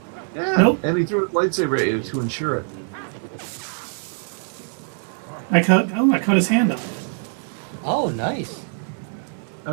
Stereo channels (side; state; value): left; silent; 63 dB below the other